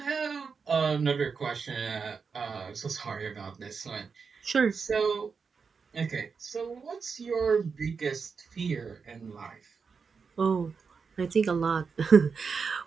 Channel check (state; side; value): quieter; left; 5.4 dB